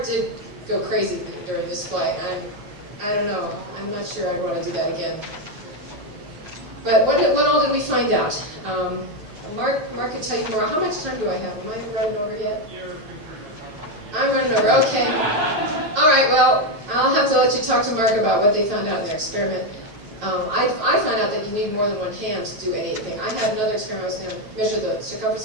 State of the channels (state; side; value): late; left; 9.3 ms